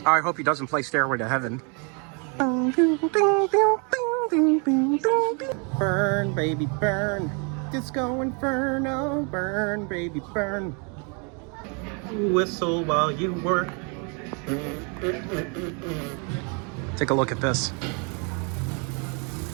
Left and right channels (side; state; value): left; quieter; 35.8 dB